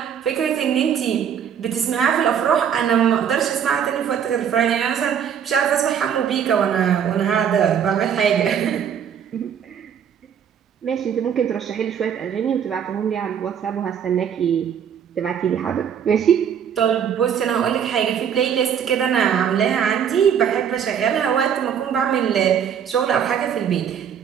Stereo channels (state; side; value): quieter; left; 8.3 dB